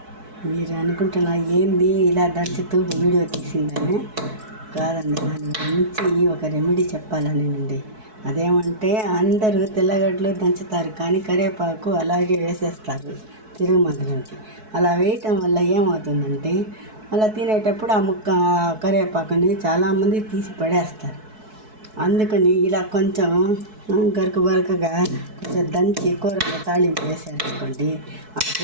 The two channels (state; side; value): late; left; 4.6 ms